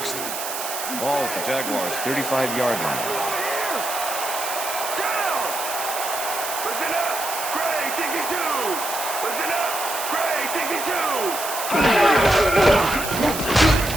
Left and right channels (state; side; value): noise; right; hiss, 6 dB below the sound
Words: Ball at the Jaguars' 35-yard line.